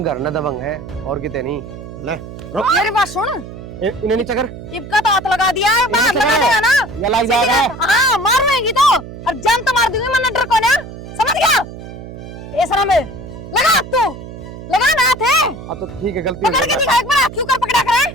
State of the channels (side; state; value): right; noise; hum, 13 dB below the sound